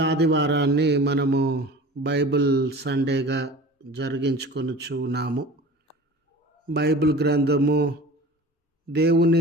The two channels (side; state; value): both; normal; correlation 0.39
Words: ఆదివారాన్ని మనము బైబిల్ సండేగా జరిగించుకొనుచున్నాము. బైబిల్ గ్రంథము,